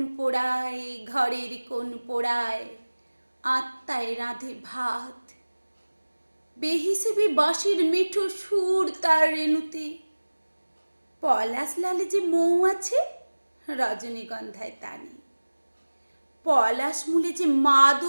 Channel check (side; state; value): both; inverted; correlation -1.00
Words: পোড়ায়, ঘরের কোণ পোড়ায়, আত্মায় রাঁধে ভাত। বেহিসেবি বাঁশির মিঠো সুর তার রেণুতে। পলাশ লালে যে মৌ আছে, রজনীগন্ধায় তা নেই। পলাশ মূলে যে